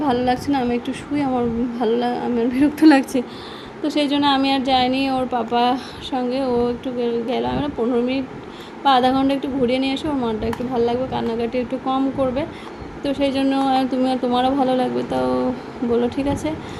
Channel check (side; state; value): both; identical; correlation 1.00